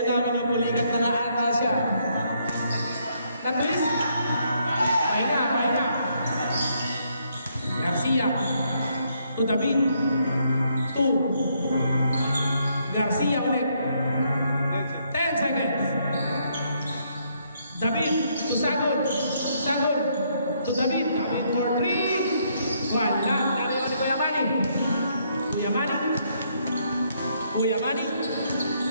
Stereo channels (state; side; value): inverted; both; correlation -0.72